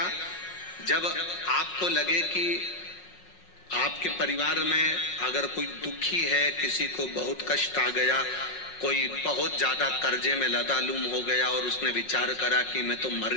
जब आपको लगे कि आपके परिवार में अगर कोई दुखी है, किसी को बहुत कष्ट आ गया, कोई बहुत ज्यादा कर्जे में लदालूम हो गया और उसने विचार करा कि मैं तो मर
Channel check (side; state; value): right; late; 5.5 ms